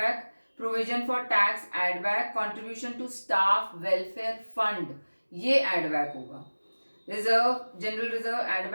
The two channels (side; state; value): both; inverted; correlation -1.00